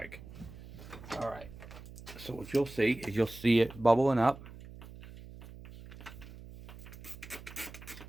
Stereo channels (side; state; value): right; noise; hum, 15 dB below the sound